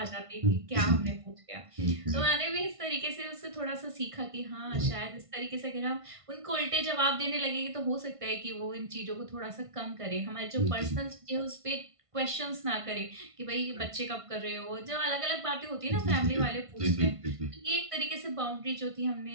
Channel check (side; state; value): left; late; 1.5 ms